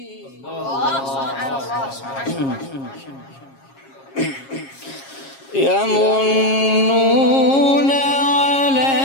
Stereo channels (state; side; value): late; right; 7.4 ms